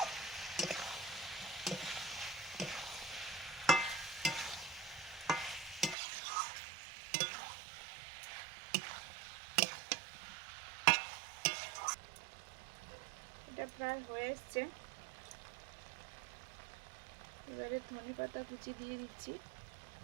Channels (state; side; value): drops out; left; at 6.0 s